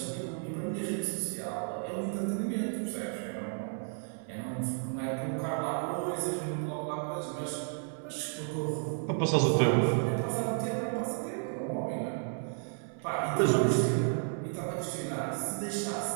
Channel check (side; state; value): left; silent; 56 dB below the other